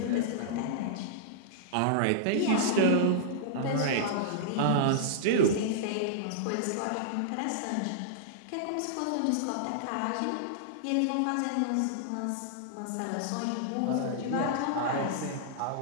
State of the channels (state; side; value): different; both; correlation -0.02